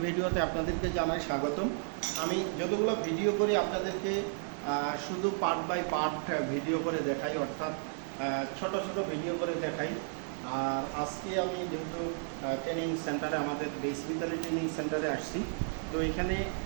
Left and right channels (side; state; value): left; silent; 56 dB below the other